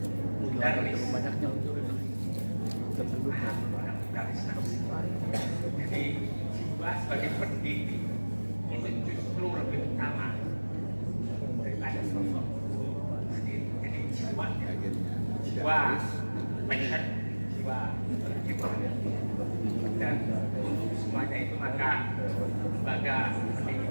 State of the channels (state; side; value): inverted; both; correlation -1.00